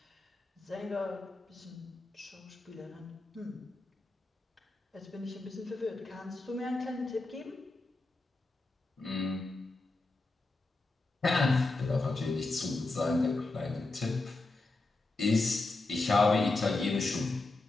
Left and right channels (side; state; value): right; quieter; 3.2 dB